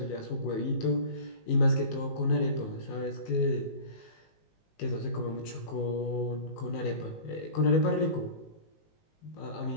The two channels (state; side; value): late; right; 19 ms